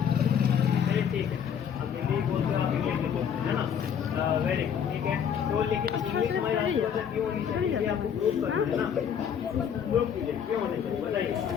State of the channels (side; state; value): right; quieter; 8.0 dB